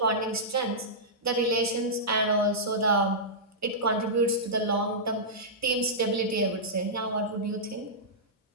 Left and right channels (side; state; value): both; normal; correlation -0.14